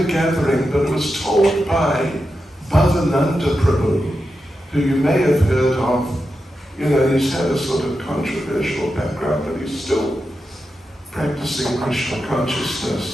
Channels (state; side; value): normal; both; correlation 0.89